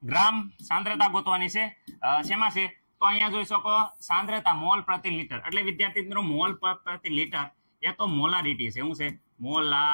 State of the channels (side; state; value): both; inverted; correlation -1.00